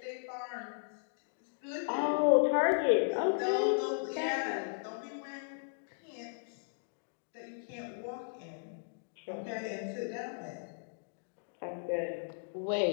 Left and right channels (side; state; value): right; silent; digital silence